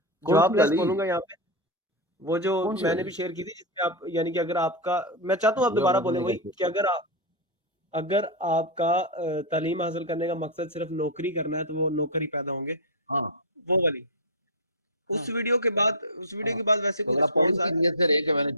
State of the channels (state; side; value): normal; both; correlation -0.03